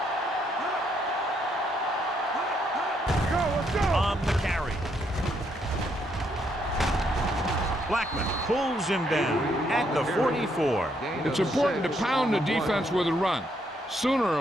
On the carry. Blackman pulls him down at the 44. It's important to pound the defense with a run. Sooner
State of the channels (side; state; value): both; normal; correlation 0.74